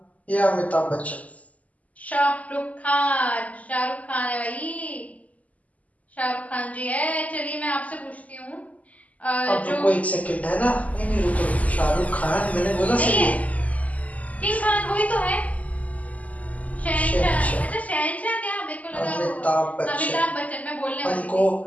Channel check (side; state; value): right; late; 0.073 ms